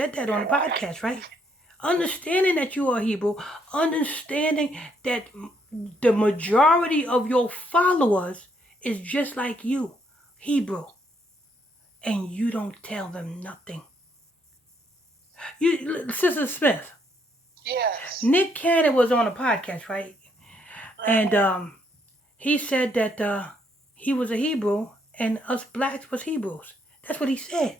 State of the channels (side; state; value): both; normal; correlation 0.72